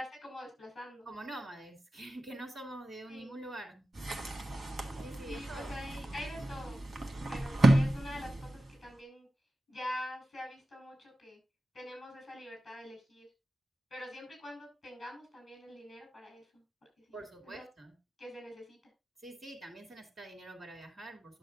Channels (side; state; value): both; normal; correlation 0.93